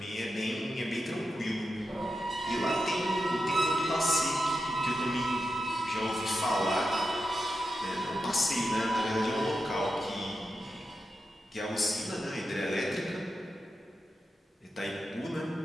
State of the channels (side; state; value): both; normal; correlation 0.88